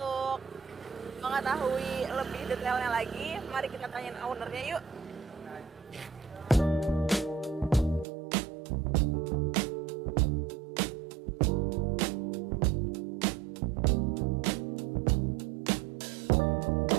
mengetahui lebih detailnya lagi, mari kita tanyain ownernya yuk.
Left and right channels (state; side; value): drops out; left; at 8.1 s